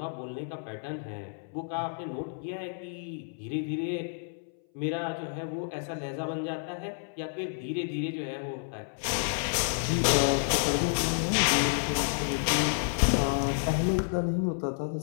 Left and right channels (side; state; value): right; silent; 58 dB below the other